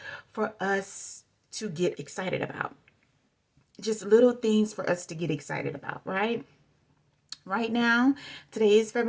for us to get excited about, just little things for us to get excited about, right? Right now, today is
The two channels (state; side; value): identical; both; correlation 1.00